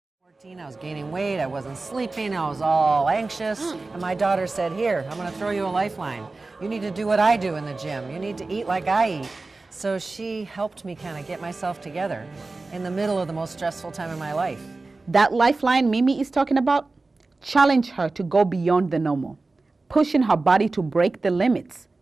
14, I was gaining weight, I wasn't sleeping, I was all anxious, and my daughter said, "Here, I'm going to throw you a lifeline. You need to do what I do in the gym. You need to eat like I eat." So she helped me kind of get myself together in the middle of the most stressful time of my life. That lifeline Mimi is talking about challenged her to go beyond the normal, pushing her body to break the limits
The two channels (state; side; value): quieter; left; 3.5 dB